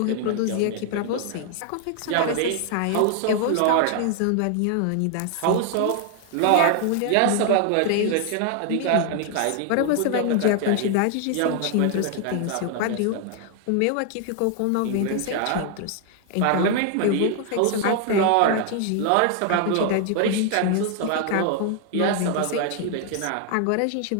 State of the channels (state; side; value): different; both; correlation 0.00